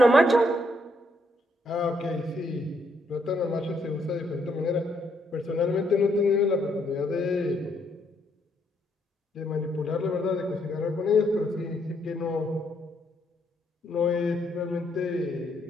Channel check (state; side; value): normal; both; correlation 0.73